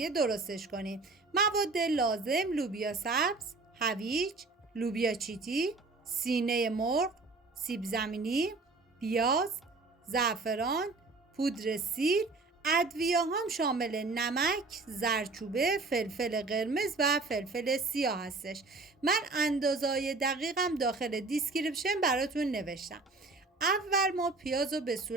درستش کنیم. مواد لازم: لوبیا سبز، هویج، لوبیا چیتی، سینه مرغ، سیب زمینی، پیاز، زعفران، پودر سیر. ادویه هم شامل نمک، زردچوبه، فلفل قرمز و فلفل سیاه هستش. من اندازه‌های دقیقم داخل دیسکریپشن براتون نوشتم. اول ما پیاز رو به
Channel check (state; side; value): quieter; left; 3.6 dB